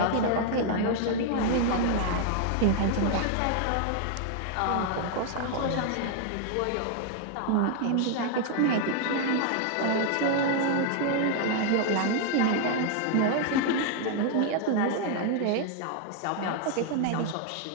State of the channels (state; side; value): different; both; correlation 0.00